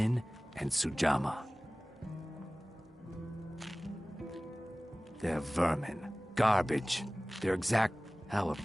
and Sujama. They're vermin. Garbage. They're exact... How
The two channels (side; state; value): both; normal; correlation 0.98